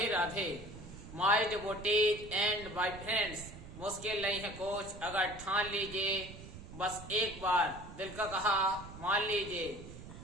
Radhe. My devotees and my friends, मुश्किल नहीं है कुछ अगर ठान लीजिए, बस एक बार दिल का कहा मान लीजिए।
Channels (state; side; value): noise; right; rumble, 14 dB below the sound